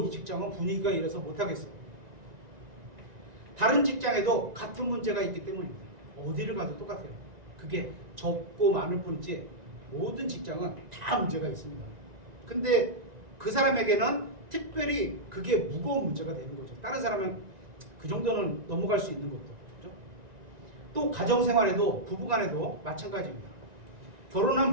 이 직장은 분위기가 이래서 못하겠어. 다른 직장에도 같은 문제가 있기 때문입니다. 어디를 가도 똑같아요. 그게 적고 많을 뿐이지 모든 직장은 다 문제가 있습니다. 근데 그 사람에게는 특별히 그게 무거운 문제가 되는 거죠. 다른 사람은 그 정도는 넘어갈 수 있는 것도. 그렇죠? 또 가정생활에도 부부간에도 마찬가지입니다. 결혼한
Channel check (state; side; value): late; left; 1.9 ms